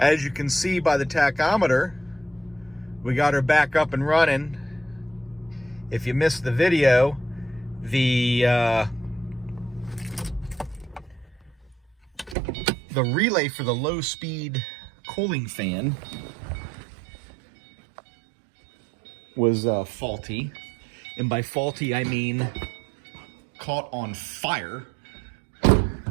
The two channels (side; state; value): left; drops out; at 12.4 s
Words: you can see by the tachometer, we got her back up and running. If you missed the video, the relay for the low-speed cooling fan was faulty. And by faulty, I mean caught on fire.